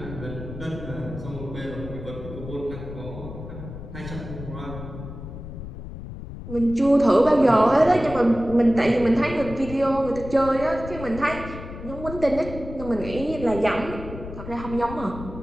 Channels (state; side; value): noise; left; rumble, 11 dB below the sound